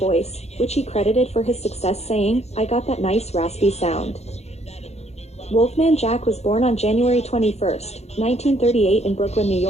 which he credited for his success saying, "I got that nice raspy sound." Wolfman Jack was born on January 21, 1938 in Brooklyn, New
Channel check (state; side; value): late; right; 0.31 ms